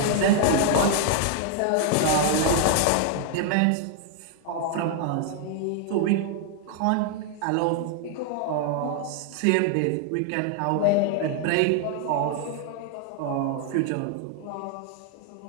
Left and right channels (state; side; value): different; both; correlation 0.00